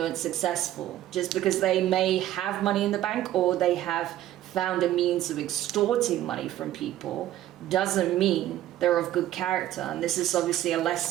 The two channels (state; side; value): quieter; left; 13.3 dB